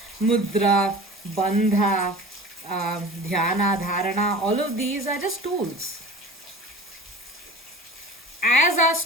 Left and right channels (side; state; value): both; normal; correlation 0.38